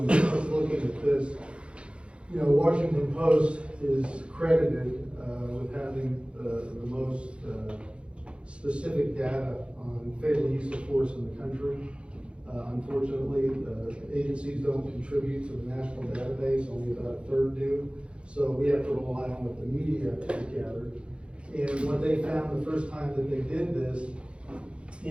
us looking at this. You know, Washington Post is credited with having the most specific data on fatal use of force in the country. Unfortunately, the agencies don't contribute to the national database, only about a third do. So we have to rely on what the media gathered. And what they found the first time that they did this,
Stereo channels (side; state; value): left; late; 0.058 ms